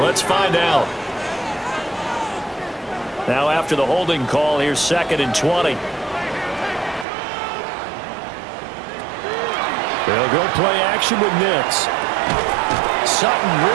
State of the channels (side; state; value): left; drops out; at 7.1 s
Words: find out. Now after the holding call, here's 2nd and 20. They'll go play action with Nix. Sutton